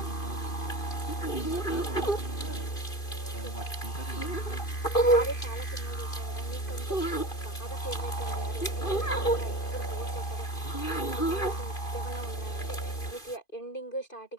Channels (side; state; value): right; late; 2.5 ms